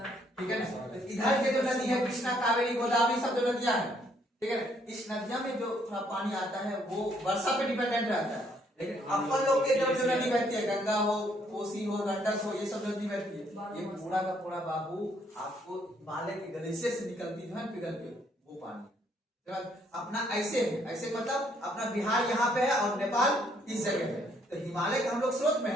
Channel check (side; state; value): both; normal; correlation 0.68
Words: ठीक है ना। तो इधर के जो नदी है कृष्णा, कावेरी, गोदावरी सब जो नदियां हैं, ठीक है ना, इस नदियों में जो थोड़ा पानी आता है वो वर्षा पे डिपेंडेंट रहता है। लेकिन अपन लोग के जो नदी बहती है, गंगा हो, कोसी हो, गंडक हो, ये सब नदी बहती है, ये पूरा का पूरा बाबू आपको हिमालय के ग्लेशियर से निकलती है पिघल के, वो पानी। अपना ऐसे है, ऐसे मतलब अपना बिहार यहाँ पे है और नेपाल इस जगह है, तो हिमालय का हम लोग स्रोत में